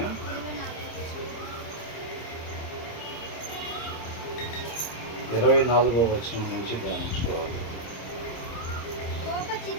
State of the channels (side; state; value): right; late; 26 ms